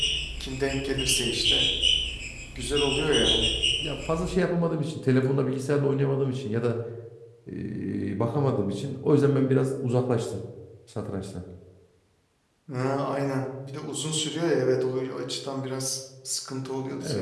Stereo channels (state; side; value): identical; both; correlation 1.00